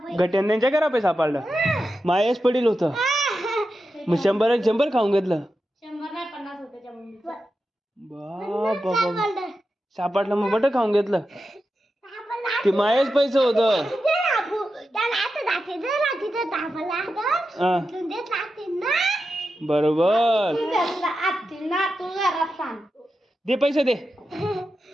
गट्यांच्या घरा पैसा सापडलं. मायस पडील होतं. मग 100 खाऊन घेतलं. बाबा सापडलं मग बट खाऊन घेतलं. ते मायस पैसे होतं. बरोबर दे पैसे दे.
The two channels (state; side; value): normal; both; correlation 0.90